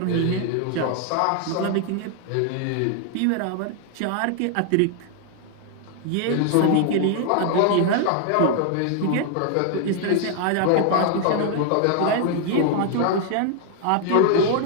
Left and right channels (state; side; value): different; both; correlation 0.00